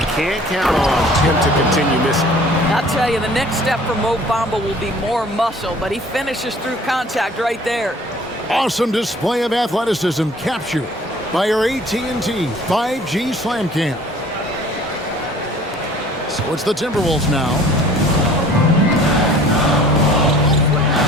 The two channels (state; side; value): normal; both; correlation 0.51